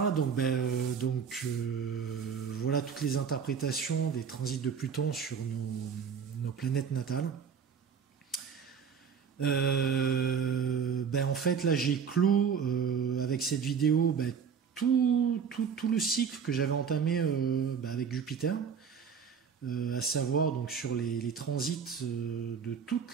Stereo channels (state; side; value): quieter; left; 6.7 dB